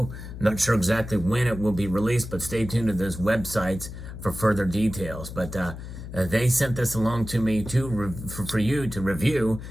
Not sure exactly when it will be released, but stay tuned to those websites for further details. But they sent this along to me for you to review.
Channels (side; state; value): left; noise; hum, 11 dB below the sound